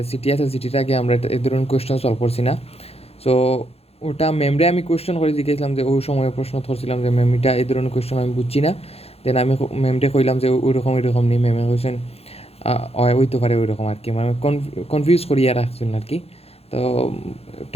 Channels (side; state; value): right; late; 0.29 ms